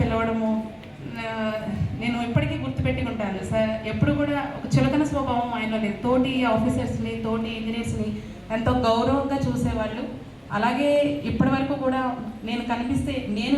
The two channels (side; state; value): both; identical; correlation 1.00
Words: పిలవడము నేను ఇప్పటికీ గుర్తుపెట్టుకుంటాను. సార్ ఎప్పుడు కూడా ఒక చులకన స్వభావం ఆయనలో లేదు. తోటి ఆఫీసర్స్ని, తోటి ఇంజనీర్స్ని ఎంతో గౌరవంగా చూసేవాళ్ళు. అలాగే ఇప్పటి వరకు కూడా నేను కనిపిస్తే నేను